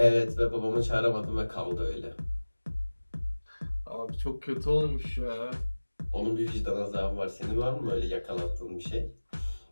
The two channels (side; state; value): both; inverted; correlation -1.00